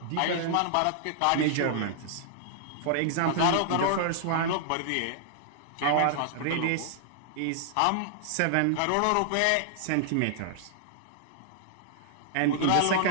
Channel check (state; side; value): different; both; correlation -0.01